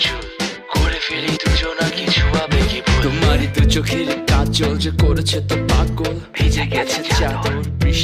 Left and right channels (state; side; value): identical; both; correlation 1.00